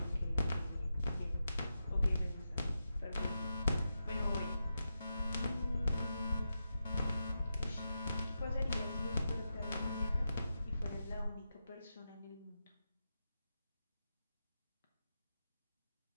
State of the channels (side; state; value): both; inverted; correlation -0.88